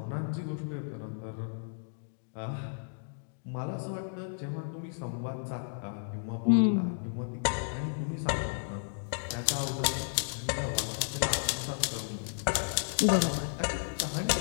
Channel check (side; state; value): right; silent; digital silence